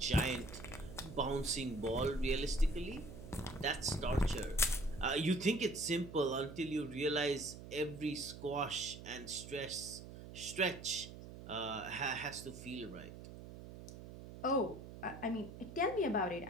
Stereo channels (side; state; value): right; noise; hum, 13 dB below the sound